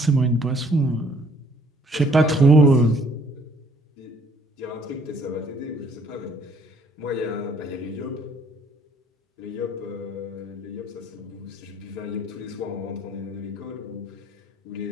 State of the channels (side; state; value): both; normal; correlation 0.61